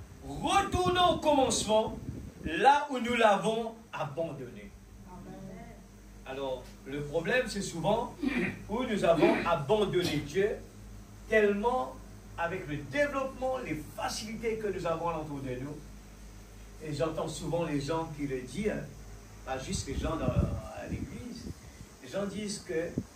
retournons au commencement, là où nous l'avons abandonné. Alors, le problème, c'est souvent où nous avons abandonné Dieu, tellement avec le développement, les facilités que nous avons autour de nous. Et j'entends souvent les gens qui le disent, pas juste les gens à l'église, les gens disent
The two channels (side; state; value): both; identical; correlation 1.00